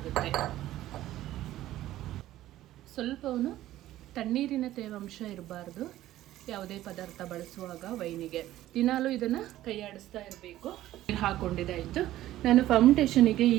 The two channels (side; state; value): left; quieter; 14.3 dB